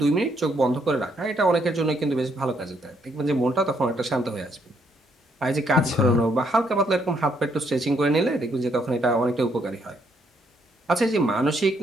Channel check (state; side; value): normal; both; correlation 0.72